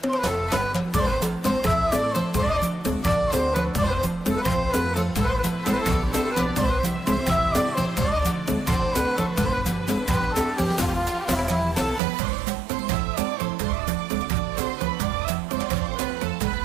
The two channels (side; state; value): left; drops out; at 12.0 s